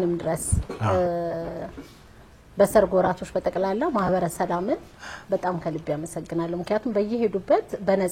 ድረስ በሰርግ ወራቶች በጠቅላላ ማህበረ ሰላምን በጣም ከልብ ያመሰግናለሁ። ምክንያቱም በየሄዱበት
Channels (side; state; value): both; identical; correlation 1.00